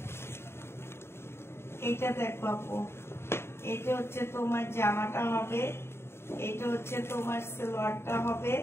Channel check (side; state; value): right; late; 0.12 ms